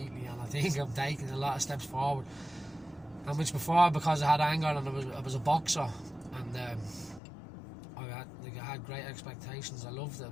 And I think I'm taking a lot of steps forward. And which before, because I had anger and I was a boxer, and I had great expectations. I loved it. It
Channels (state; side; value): drops out; right; at 7.2 s